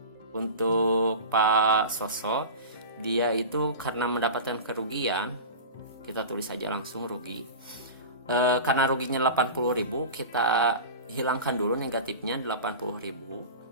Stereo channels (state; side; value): inverted; both; correlation -0.30